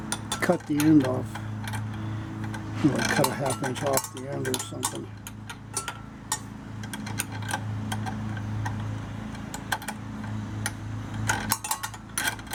cut the end off, you know, cut a 1/2 inch off the end or something.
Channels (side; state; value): both; identical; correlation 1.00